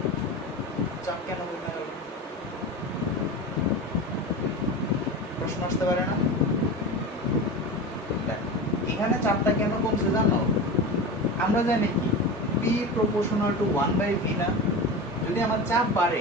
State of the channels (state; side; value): normal; both; correlation 0.27